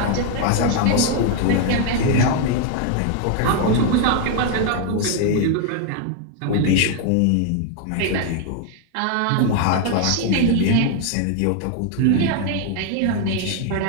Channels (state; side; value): different; both; correlation 0.00